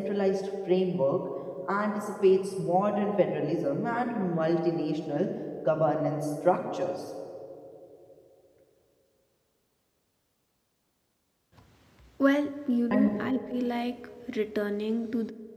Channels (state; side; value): identical; both; correlation 1.00